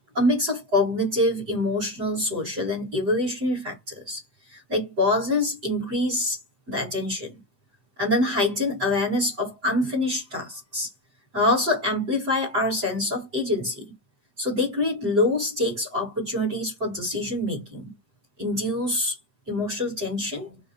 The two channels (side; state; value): left; late; 7.9 ms